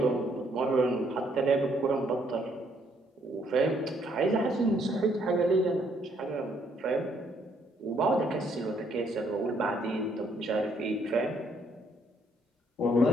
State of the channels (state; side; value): normal; both; correlation 0.69